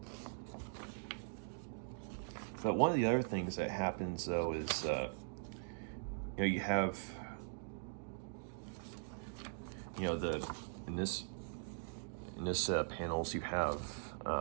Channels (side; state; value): left; silent; digital silence